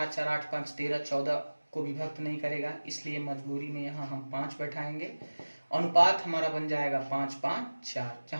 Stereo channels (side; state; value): both; inverted; correlation -1.00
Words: 4 8 5 13, 14 को विभक्त नहीं करेगा, इसलिए मजबूरी में यहाँ हम 5 बैठाएंगे। अनुपात हमारा बन जाएगा 5 5 4,